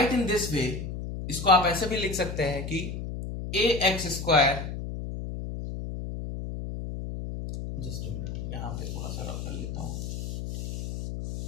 in this way, इसको आप ऐसे भी लिख सकते हैं कि ax स्क्वायर, जस्ट यहां पे थोड़ा सा रफ कर लेता हूं.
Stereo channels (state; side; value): noise; left; hum, 5 dB below the sound